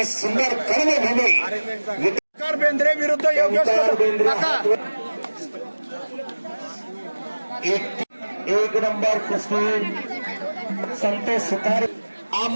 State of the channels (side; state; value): both; inverted; correlation -1.00